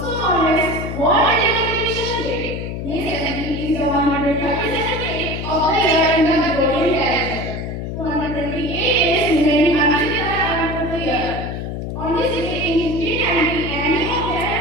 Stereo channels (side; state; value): left; noise; hum, 5 dB below the sound